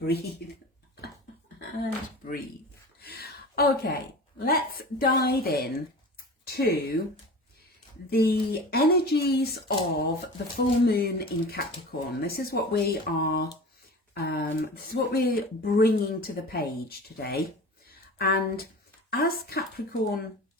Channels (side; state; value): both; normal; correlation 0.35